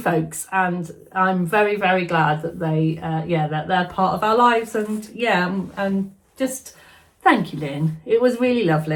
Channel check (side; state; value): both; identical; correlation 1.00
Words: and I'm very, very glad that they that they're part of our lives. And yeah, and just thank you, Lynn. It was really